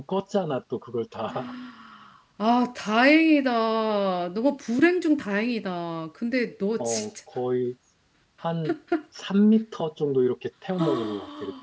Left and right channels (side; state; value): both; identical; correlation 1.00